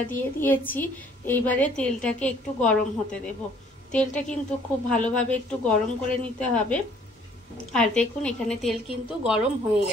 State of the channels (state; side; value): normal; both; correlation 0.58